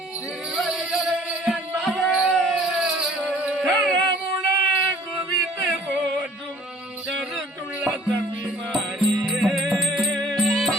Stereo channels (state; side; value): normal; both; correlation 0.53